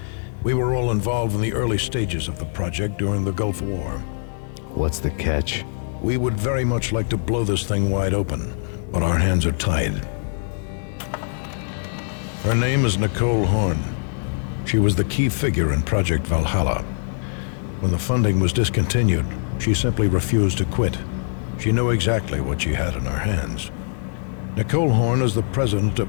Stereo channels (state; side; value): silent; right; digital silence